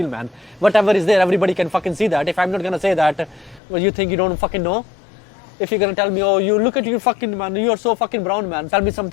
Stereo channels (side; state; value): right; drops out; at 3.6 s